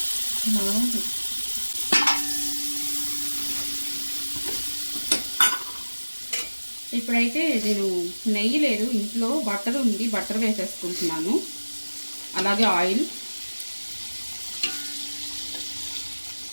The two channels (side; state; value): both; inverted; correlation -1.00